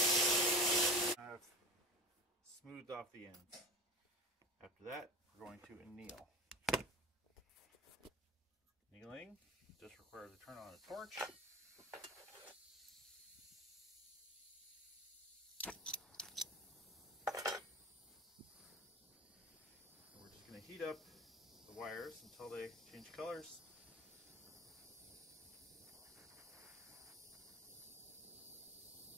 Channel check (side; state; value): both; normal; correlation 0.31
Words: I've smoothed off the ends. After that, we're going to anneal. Annealing just requires to turn on a torch. We're just going to heat up the wires until they change colors.